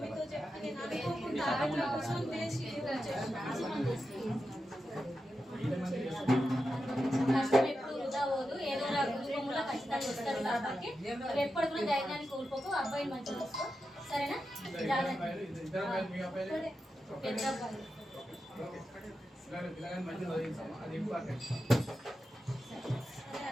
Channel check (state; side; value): normal; both; correlation 0.89